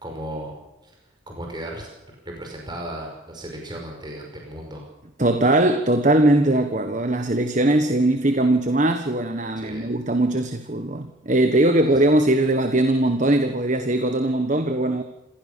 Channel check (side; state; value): both; normal; correlation 0.51